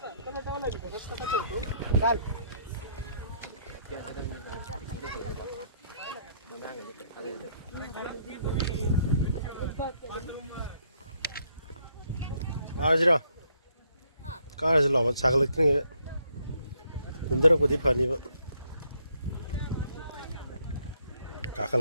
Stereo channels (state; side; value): inverted; both; correlation -0.70